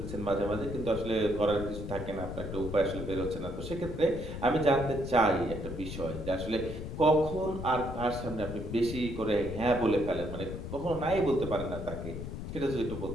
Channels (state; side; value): noise; left; rumble, 7 dB below the sound